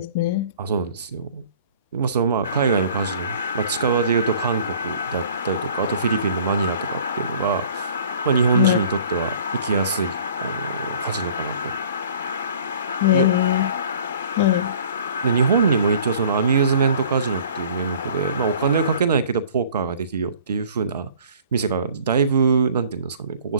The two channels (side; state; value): both; inverted; correlation -0.50